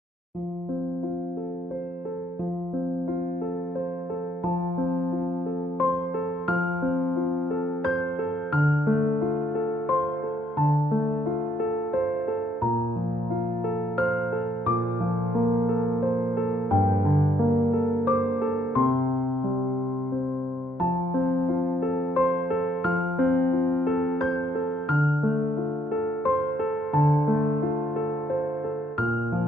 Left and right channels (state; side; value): normal; both; correlation 0.71